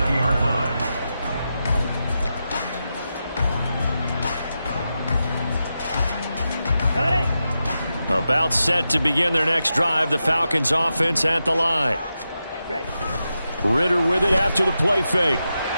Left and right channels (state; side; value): inverted; both; correlation -0.89